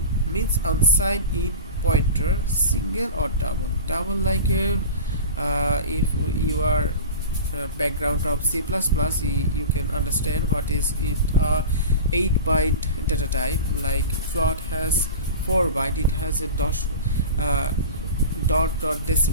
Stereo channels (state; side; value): inverted; both; correlation -0.32